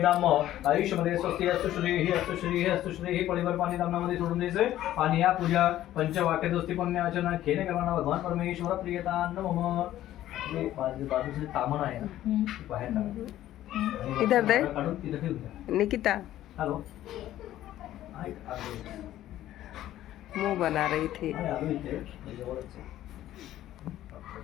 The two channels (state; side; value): quieter; right; 13.4 dB